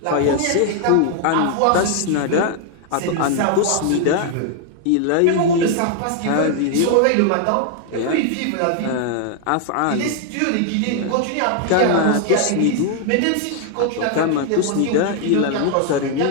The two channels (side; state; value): both; different; correlation 0.00